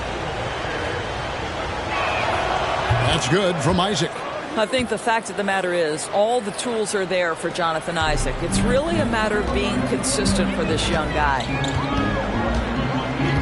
That's good from Isaac. I think the fact of the matter is all the tools are there for Jonathan Isaac. It's really a matter of being consistent for this young guy.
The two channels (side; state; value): both; identical; correlation 1.00